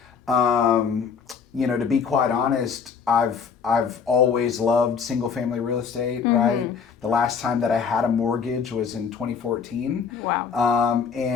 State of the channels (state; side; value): quieter; right; 6.3 dB